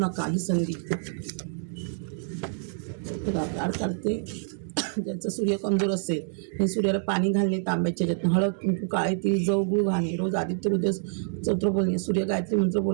ही संधी. काढ काढते. ज्याचा सूर्य कमजोर असेल हे सूर्याला पाणी घालणे, तांब्याच्या ह्याच्यातून हळद कुंकू काळे तिळ जव गुळ घालणे, रोज आदित्य हृदय स्तोत्र बोलणे, सूर्य गायत्री मंत्र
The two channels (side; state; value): left; silent; 60 dB below the other